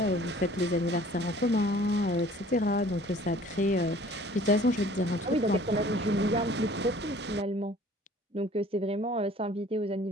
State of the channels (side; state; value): both; normal; correlation 0.51